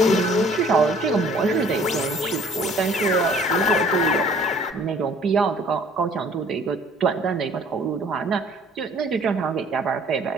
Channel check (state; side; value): normal; both; correlation 0.55